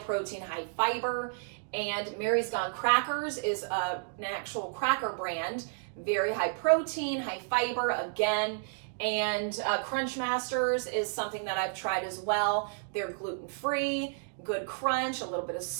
high fiber, And Mary's Gone Crackers is an actual cracker brand, very high protein, high fiber again. And Crunch Masters is something that I've tried as well. They're gluten-free, good crunch, a little bit of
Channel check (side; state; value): left; silent; digital silence